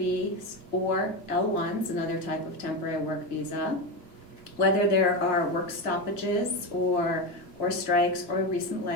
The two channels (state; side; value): late; right; 2.8 ms